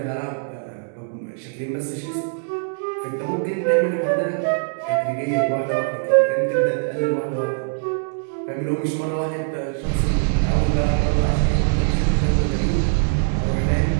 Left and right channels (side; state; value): left; silent; digital silence